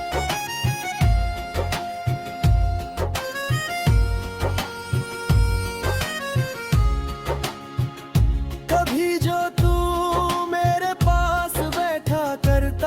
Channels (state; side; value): identical; both; correlation 1.00